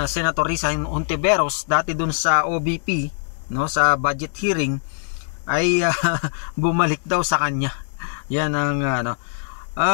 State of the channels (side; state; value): right; silent; digital silence